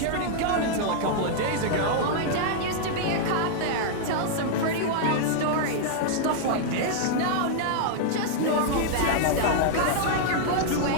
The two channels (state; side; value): different; both; correlation -0.01